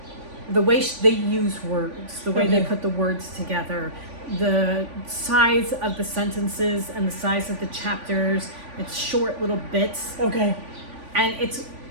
the way they use words, the way they put the words together, the size of the sentences and the size of the chapters, it's short little bits. Okay. And it's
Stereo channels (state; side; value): late; left; 3.5 ms